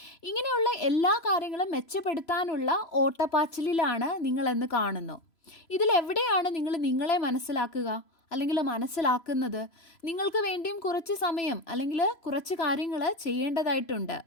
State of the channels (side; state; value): right; late; 3.0 ms